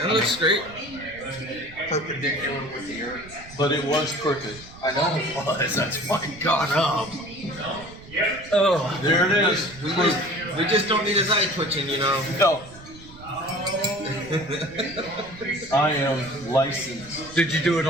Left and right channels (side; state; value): right; noise; rumble, 19 dB below the sound